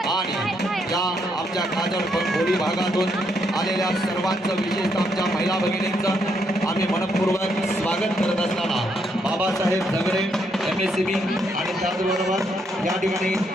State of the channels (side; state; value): both; normal; correlation 0.75